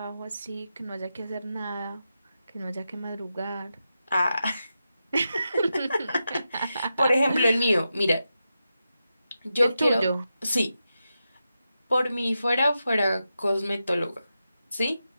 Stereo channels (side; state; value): both; inverted; correlation -0.89